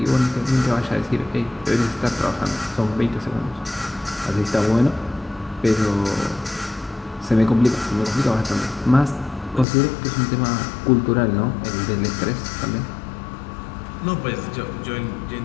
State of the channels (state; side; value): drops out; right; at 9.7 s